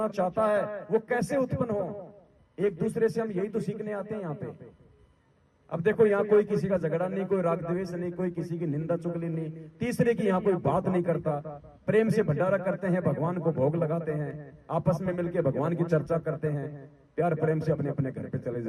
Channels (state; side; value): identical; both; correlation 1.00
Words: चाहता है वो कैसे उत्पन्न हो, एक दूसरे से हम यही तो सीखने आते हैं यहाँ पे। अब देखो, यहाँ कोई किसी का झगड़ा नहीं, कोई राग द्वेष नहीं, कोई किसी की निंदा चुगली नहीं, तीसरे की यहाँ कोई बात नहीं करता, प्रेम से भंडारा करते हैं, भगवान को भोग लगाते हैं, आपस में मिलकर भगवान की चर्चा करते हैं, प्यार प्रेम से अपने अपने घर पे चले